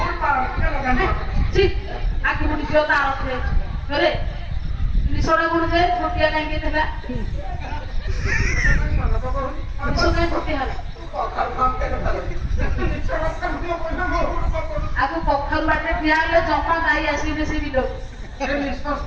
ଆଖି ବୁଣି ଝିଅ ତାର ଘରେ ନିଶଟା କଣ ଯେ ଛୋଟିଆ କାହିଁକି ଥିଲା ନିଶ କାହିଁ ଛୋଟିଆ ହେଲା ଆଗ କଖାରୁ ବାଟେ ଠିଆ ହେଲେ ଜମା ଗାଈ ଆସିବେ ସେ ବିଲକୁ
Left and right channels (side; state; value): both; identical; correlation 1.00